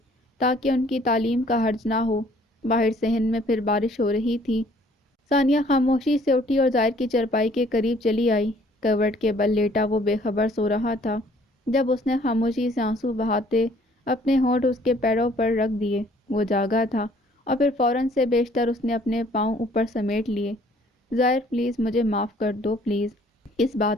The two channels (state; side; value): normal; both; correlation 0.59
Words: تاکہ ان کی تعلیم کا حرج نہ ہو۔ باہر صحن میں پھر بارش ہو رہی تھی۔ ثانیہ خاموشی سے اٹھی اور زائر کی چرپائی کے قریب چلی آئی۔ کروٹ کے بل لیٹا وہ بے خبر سو رہا تھا جب اس نے خاموشی سے آنسو بہاتے اپنے ہونٹ اس کے پیروں پر رکھ دیے۔ وہ جاگا تھا اور پھر فوراً سے بیشتر اس نے اپنے پاؤں اوپر سمیٹ لیے۔ زائر پلیز مجھے معاف کر دو پلیز۔ اس